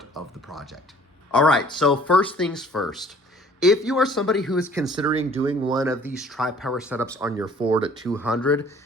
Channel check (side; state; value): both; normal; correlation 0.54